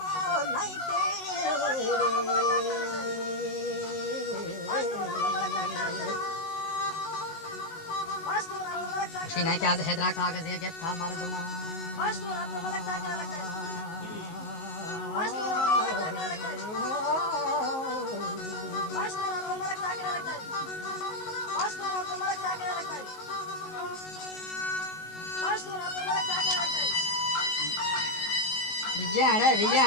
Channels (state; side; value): late; right; 19 ms